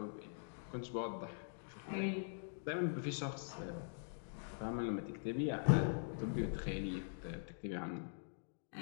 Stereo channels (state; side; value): silent; right; digital silence